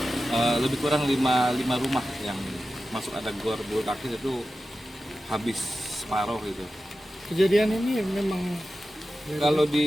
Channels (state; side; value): normal; both; correlation 0.93